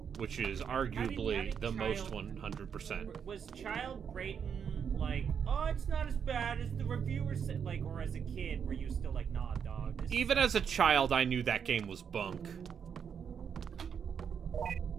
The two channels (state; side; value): quieter; left; 7.3 dB